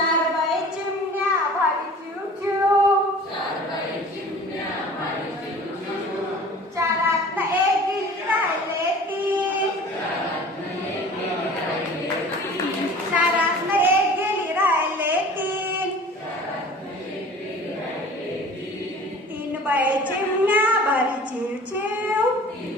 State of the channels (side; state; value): both; normal; correlation 0.44